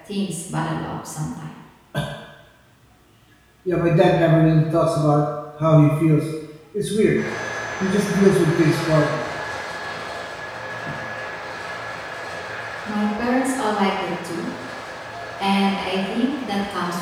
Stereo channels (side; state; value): both; identical; correlation 1.00